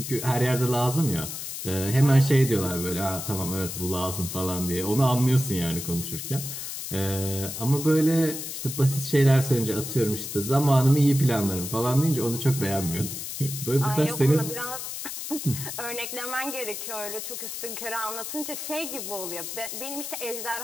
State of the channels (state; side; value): noise; left; hiss, 7 dB below the sound